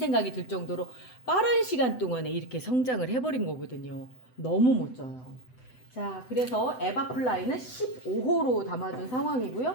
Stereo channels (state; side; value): late; right; 7.9 ms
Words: 들 정도로 빠른 시간 동안에 이렇게 성장을 해버린 거거든요. 너무 멋져요. 자, 그래서 에바플라이는 15호로 담아준